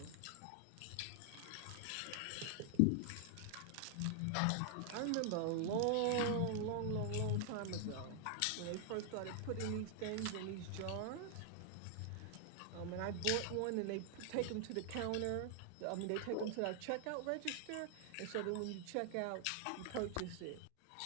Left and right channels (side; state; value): both; different; correlation 0.00